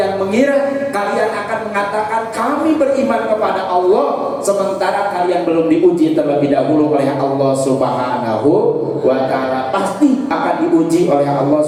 mengira kalian akan mengatakan kami beriman kepada Allah sementara kalian belum diuji terlebih dahulu oleh Allah Subhanahu wa Ta'ala? Pasti akan diuji oleh Allah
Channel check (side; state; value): both; identical; correlation 1.00